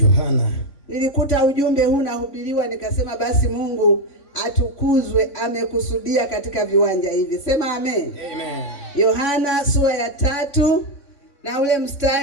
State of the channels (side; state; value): right; late; 3.5 ms